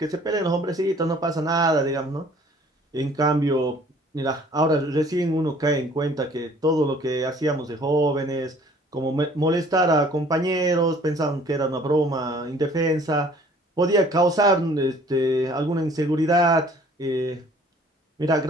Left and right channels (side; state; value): both; normal; correlation 0.54